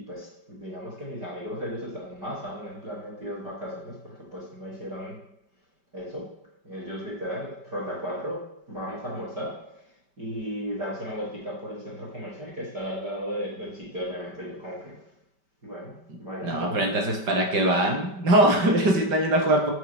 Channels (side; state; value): left; late; 5.1 ms